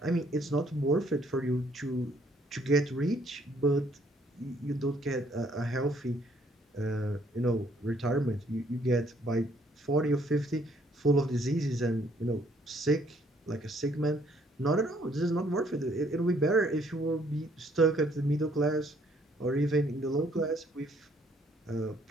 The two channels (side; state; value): both; normal; correlation 0.65